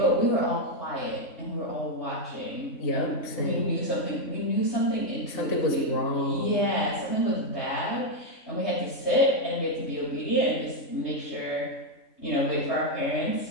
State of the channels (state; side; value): late; right; 3.4 ms